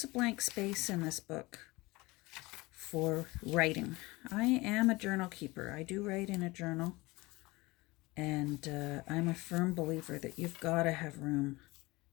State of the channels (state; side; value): quieter; right; 22.2 dB